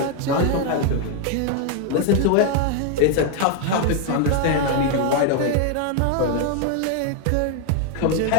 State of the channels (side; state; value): both; different; correlation 0.00